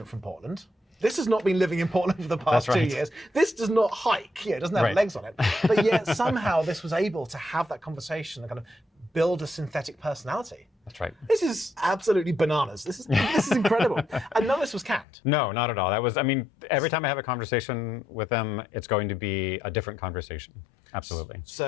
from Portland. This has not been living in Portland for the past 2 years. This does not hike. It doesn't have legs on it. But yet somehow this was able to have that conversation and kind of build a synthetic personality. That's right. This is absolutely bananas. This is incredible. And none of this was canned. No, not at all. That was, I mean, every time I have a conversation with them, it's going to be a different conversation. Absolutely.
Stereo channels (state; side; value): drops out; right; at 15.1 s